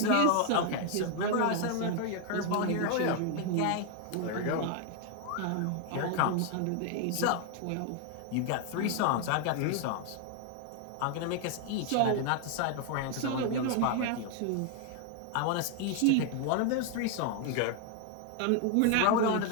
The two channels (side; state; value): both; different; correlation 0.00